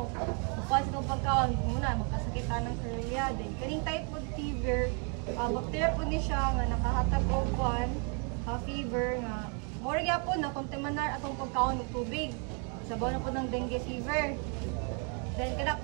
Mukha sa itong pagkaon, muna magkasakitan ng Shurella. Then kaning typhoid fever, bacteria po ni siya nga nakahatag og fever nga more gyapon na kontaminar atong pagkaon ng tubig. Sabaw na po ng dengue fever. Then kana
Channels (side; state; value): left; quieter; 36.4 dB